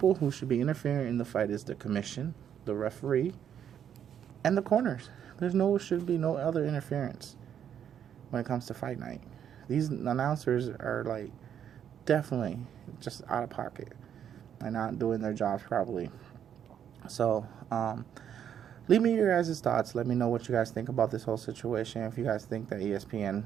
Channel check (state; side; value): quieter; left; 9.1 dB